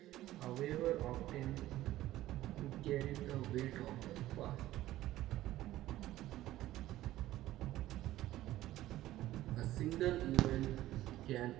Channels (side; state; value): left; quieter; 15.0 dB